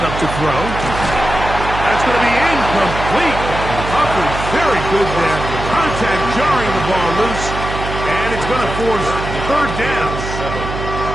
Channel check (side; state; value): right; noise; hum, 6 dB below the sound